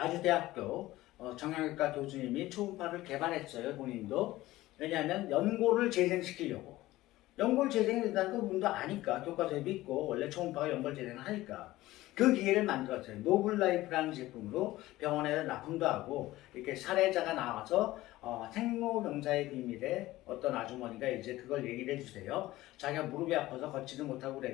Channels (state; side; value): quieter; right; 17.1 dB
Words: 정형외과 교수님이 초음파를 개발했어요. 본인도. 왜냐하면 연골을 재생시키려고. 연골 재생이 된다는 거 분도 아니까. 교과서에도 있고 원래 초음파가 연골 재생을 하니까. 그 기계를 만들었어요. 노블라이프라는 제품으로 병원에서 납품도 하고 이렇게 사례자가 나와서 생로병사의 비밀에 어떤 아주머니가 이제 그걸 얘기를 해주세요. 자기가 무릎이 아파서 걷지도 못하고